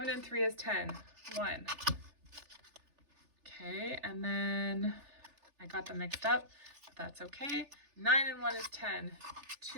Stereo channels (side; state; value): left; late; 3.4 ms